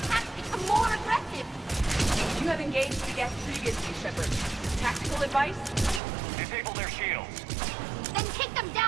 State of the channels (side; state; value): left; drops out; at 6.0 s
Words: become more aggressive! You have engaged the Geth previously, Shepard. Tactical advice? Disable their shields. Then kick them